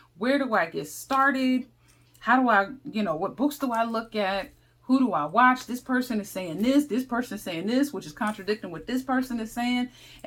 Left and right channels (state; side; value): identical; both; correlation 1.00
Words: Where do I get started? How do I, what books do I look at? Who do I watch? This person is saying this person is saying this, which is contradicting what this person is saying.